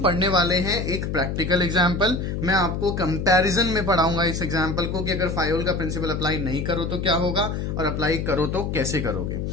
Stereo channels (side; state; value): left; noise; hum, 3 dB below the sound